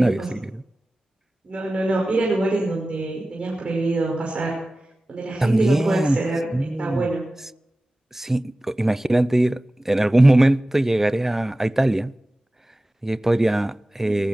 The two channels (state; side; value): normal; both; correlation 0.97